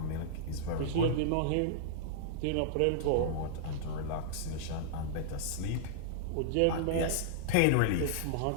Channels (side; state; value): both; different; correlation -0.01